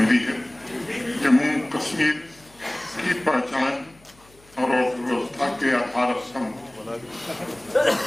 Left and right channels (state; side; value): noise; left; hum, 28 dB below the sound